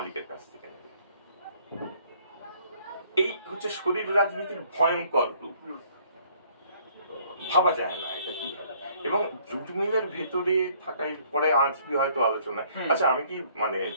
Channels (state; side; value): inverted; both; correlation -0.61